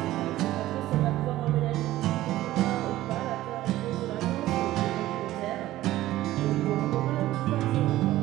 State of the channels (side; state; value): left; quieter; 15.4 dB